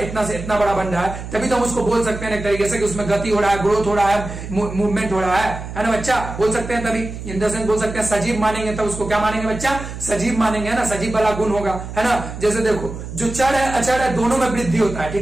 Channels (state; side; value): noise; right; hum, 9 dB below the sound